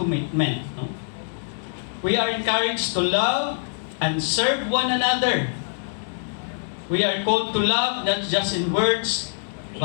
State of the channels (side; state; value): right; silent; digital silence